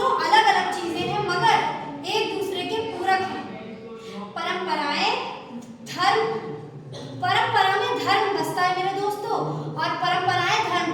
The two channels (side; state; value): both; identical; correlation 1.00